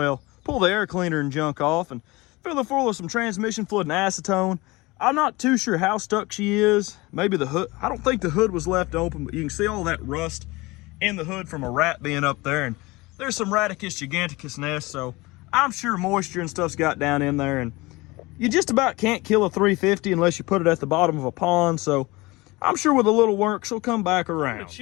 pull the air cleaner and junk off, and fill her full of some transmission fluid and acetone. I'm not too sure how stuck she is. Maybe the hood, I don't think the hood was left open, but you can see all that rust in the hood from a rat being up there, and there's some Radicus giganticus nests, so I'm sure moisture and stuff's got down in there, and you just about can't kill a 350 unless you put it at the bottom of a pond, so I'm sure with a little work, she'll come back around.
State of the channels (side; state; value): right; quieter; 22.4 dB